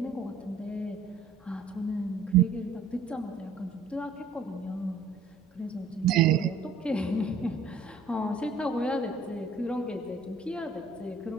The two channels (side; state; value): left; quieter; 4.0 dB